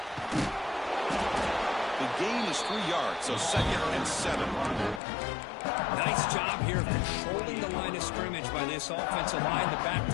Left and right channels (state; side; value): drops out; right; at 5.0 s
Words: The gain is 3 yards, so 2nd and 7. Nice job here of controlling the line of scrimmage by this offensive line. The back